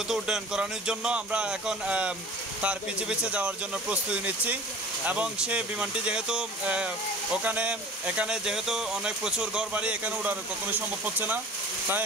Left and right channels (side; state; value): both; normal; correlation 0.42